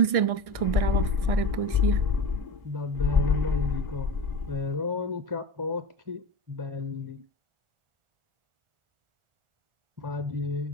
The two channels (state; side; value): late; left; 1.6 ms